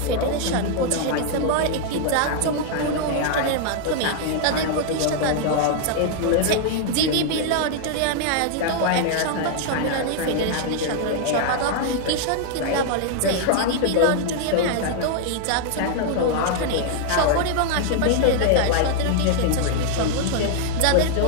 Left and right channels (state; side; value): different; both; correlation -0.01